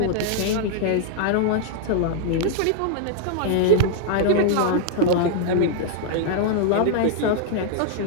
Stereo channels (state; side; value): different; both; correlation -0.01